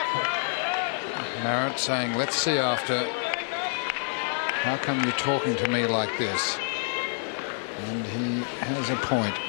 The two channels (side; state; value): right; silent; 60 dB below the other